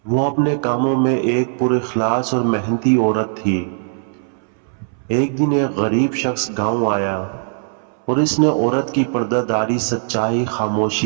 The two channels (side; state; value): left; silent; 65 dB below the other